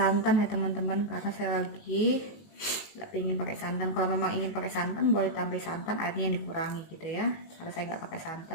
ya teman-teman, karena saya lagi nggak ingin pakai santan. Kalau memang ingin pakai santan boleh tambah santan, airnya yang dikurangi gitu ya. Karena saya nggak pakai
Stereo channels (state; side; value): late; right; 19 ms